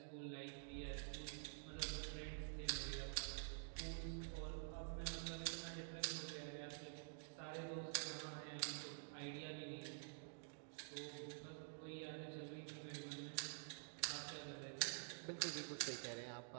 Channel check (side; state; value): left; silent; digital silence